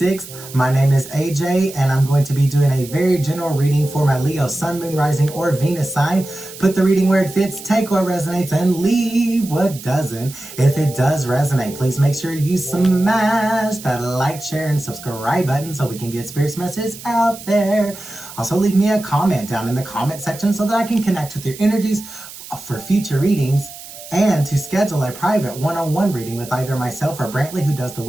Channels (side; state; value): right; noise; hiss, 15 dB below the sound